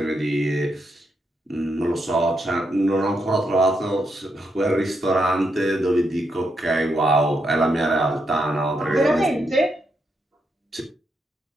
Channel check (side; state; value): both; normal; correlation 0.81